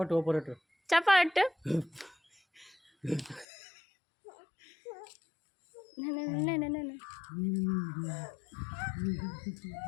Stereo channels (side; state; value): right; drops out; at 3.5 s